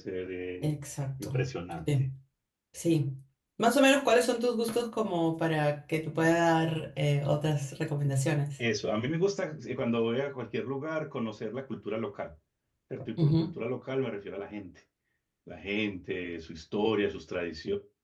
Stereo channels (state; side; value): identical; both; correlation 1.00